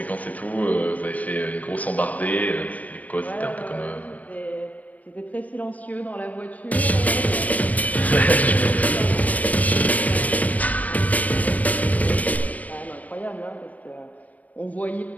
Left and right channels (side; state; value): right; late; 0.072 ms